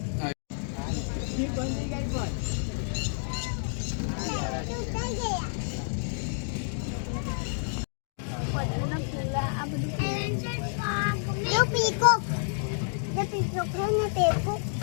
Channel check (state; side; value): silent; right; digital silence